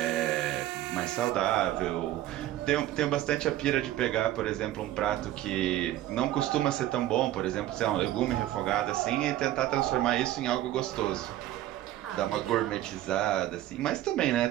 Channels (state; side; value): quieter; left; 13.9 dB